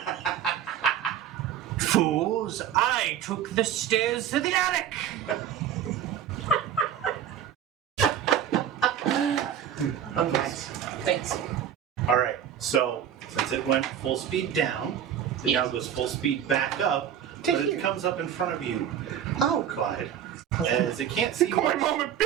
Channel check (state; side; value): quieter; left; 9.6 dB